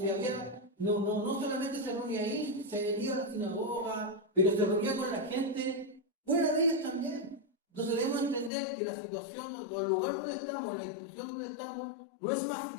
había, no solamente se reunía ahí, se iba a la sinagoga, pero se reunía con la gente fuera de ellas también. Entonces debemos entender que la situación, o el lugar donde estamos, la institución donde estamos, no es más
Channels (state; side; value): drops out; right; at 8.5 s